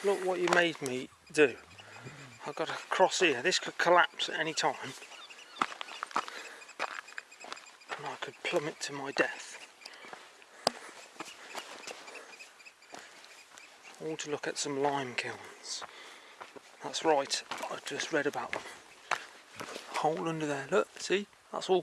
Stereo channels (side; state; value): both; identical; correlation 1.00